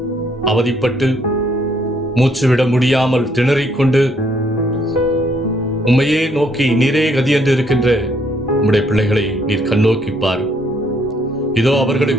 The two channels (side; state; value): both; normal; correlation 0.69